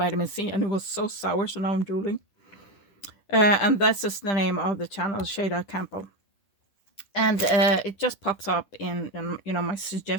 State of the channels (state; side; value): late; right; 10 ms